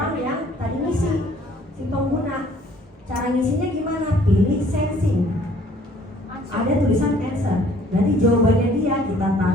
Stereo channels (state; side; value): normal; both; correlation 0.58